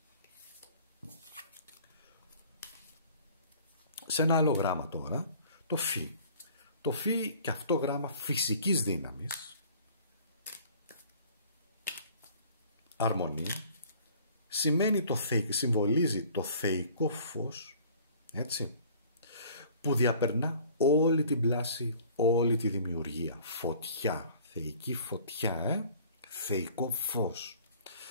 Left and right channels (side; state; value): both; inverted; correlation -0.51